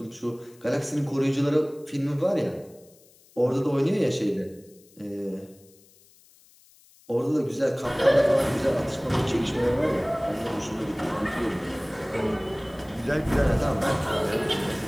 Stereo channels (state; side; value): noise; left; hiss, 28 dB below the sound